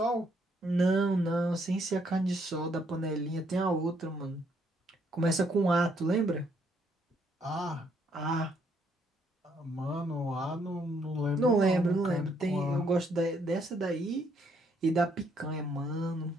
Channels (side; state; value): both; normal; correlation 0.70